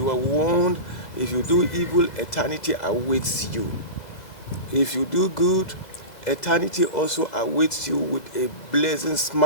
were warned if you do evil, eternity awaits you. If you do good, eternity also awaits you with a blessing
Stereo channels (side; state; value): right; late; 2.0 ms